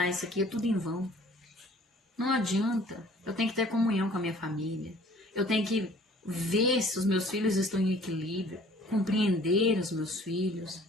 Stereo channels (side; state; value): both; normal; correlation 0.53